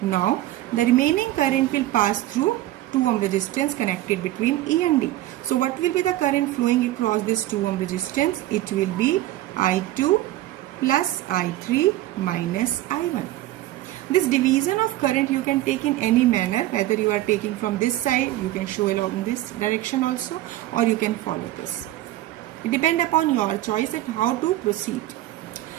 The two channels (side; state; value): left; quieter; 15.2 dB